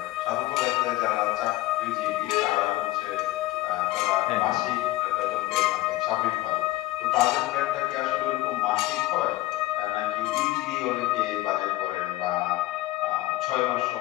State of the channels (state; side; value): quieter; right; 17.5 dB